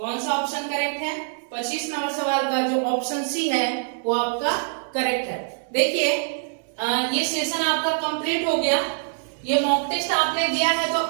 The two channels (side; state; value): left; silent; digital silence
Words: सा ऑप्शन करेक्ट है, 25 नंबर सवाल का जो ऑप्शन सी है वो आपका करेक्ट है। देखिए ये सेशन आपका कंप्लीट हो गया। ये मॉक टेस्ट आपने दिया है तो